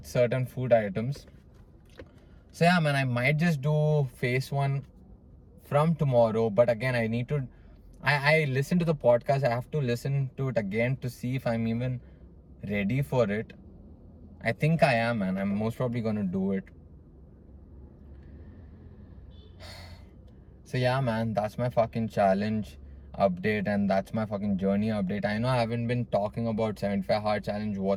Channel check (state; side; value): identical; both; correlation 1.00